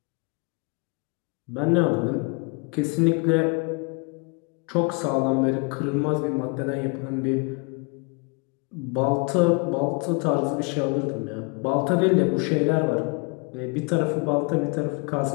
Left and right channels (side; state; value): right; quieter; 32.0 dB